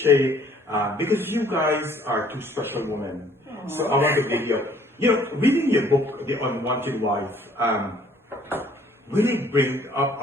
because you guys are two special women. Aww. So I want to give you, reading your book, The Unwanted Wife, really bring up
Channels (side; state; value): both; normal; correlation 0.59